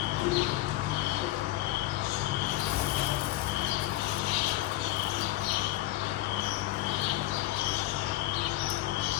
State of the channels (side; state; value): right; quieter; 16.7 dB